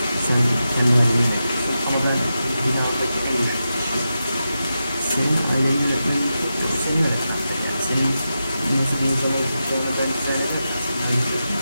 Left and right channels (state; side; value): inverted; both; correlation -0.90